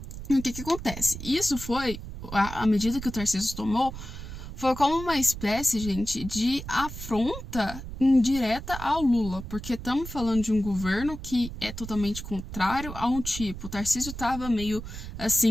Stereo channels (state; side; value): noise; right; rumble, 10 dB below the sound